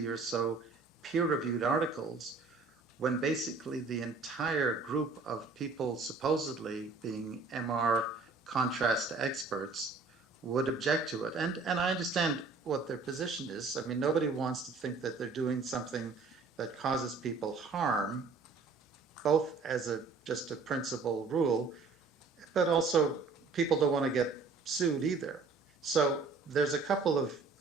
or so peer-reviewed articles when basically the entire group of people supposedly being MR contrast experts would object to it. And I understand what their position is. I mean, nobody wants to think that they're doing something that causes people harm, both as just a principal rule, but also people don't want to get sued either. So there's a couple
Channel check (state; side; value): quieter; left; 4.2 dB